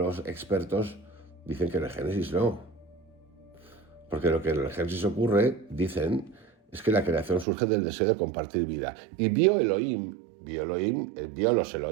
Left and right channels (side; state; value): left; drops out; at 7.5 s